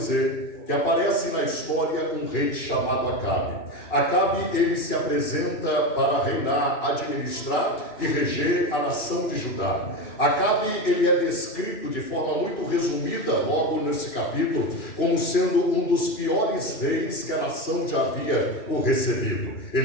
que aparece na história um rei chamado Acabe. Acabe, ele se apresenta para reinar, administrar e reger a nação de Judá. Acabe, ele é descrito de forma muito resumida, logo nesse capítulo, como sendo um dos piores reis que a nação já havia o recebido.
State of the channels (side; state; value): right; late; 2.9 ms